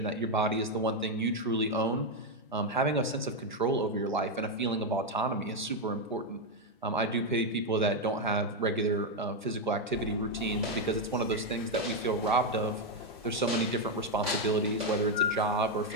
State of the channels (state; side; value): normal; both; correlation 0.04